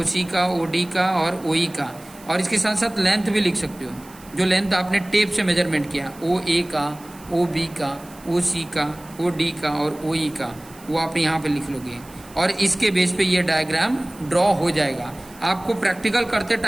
सी का, ओ डी का और ओ ई का, और इसके साथ साथ लेंथ भी लिख सकते हो, जो लेंथ आपने टेप से मेजरमेंट किया, ओ ए का, ओ बी का, ओ सी का, ओ डी का और ओ ई का, वो आप यहाँ पे लिख लोगे, और इसके बेस पे ये डायग्राम ड्रॉ हो जाएगा। आपको प्रैक्टिकल करते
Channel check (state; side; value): noise; right; hiss, 22 dB below the sound